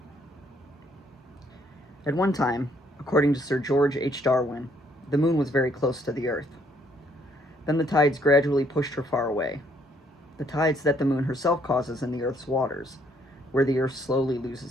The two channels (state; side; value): normal; both; correlation 0.67